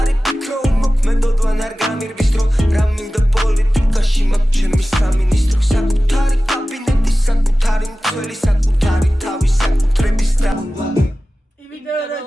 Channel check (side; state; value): both; normal; correlation 0.96